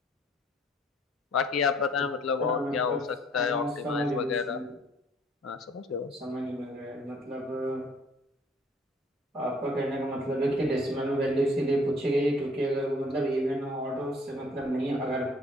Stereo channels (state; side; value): normal; both; correlation 0.57